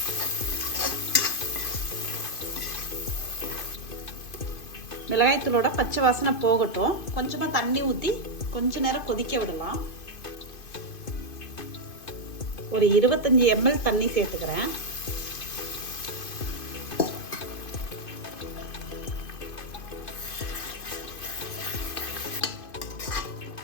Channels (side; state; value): right; late; 2.5 ms